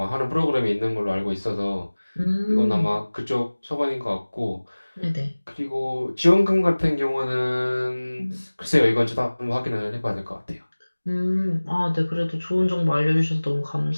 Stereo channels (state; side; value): inverted; both; correlation -1.00